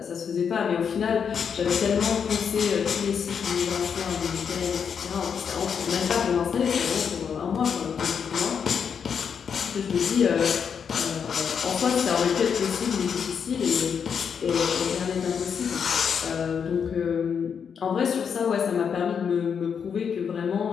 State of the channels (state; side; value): quieter; right; 7.0 dB